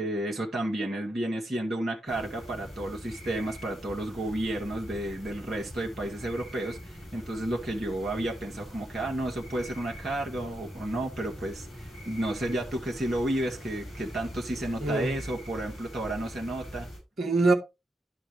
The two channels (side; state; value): both; normal; correlation 0.83